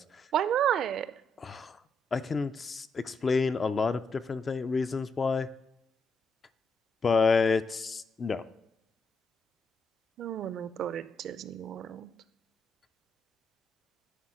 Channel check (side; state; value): both; normal; correlation 0.79